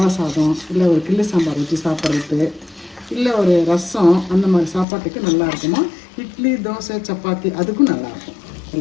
சாதம், இல்லை ஒரு கிள்ளு சாம்பார் ஊற்றி சாப்பிட்றது, இல்லை ஒரு ரசம், அந்த மாதிரி சாப்பாட்டுக்கு நல்லா இருக்குமா. இட்லி, தோசை, சப்பாத்தி அதுக்கும் நல்லாயிருக்கும்.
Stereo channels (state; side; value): drops out; right; at 4.9 s